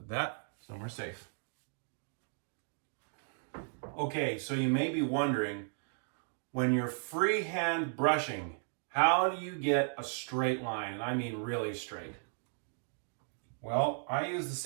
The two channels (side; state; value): left; silent; 54 dB below the other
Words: that somewhere safe. Okay, so you may be wondering, when you're freehand brushing, how do you get a straight line? And I mean really straight. Well, I use the